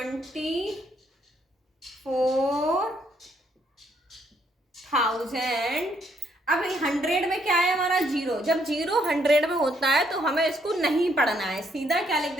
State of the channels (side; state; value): both; normal; correlation 0.71